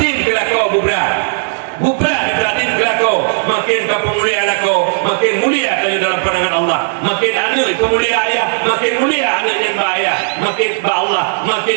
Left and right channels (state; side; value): silent; left; digital silence